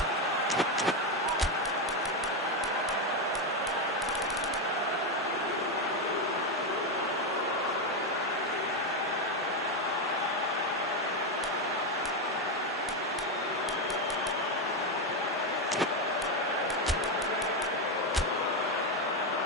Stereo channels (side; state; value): both; normal; correlation 0.08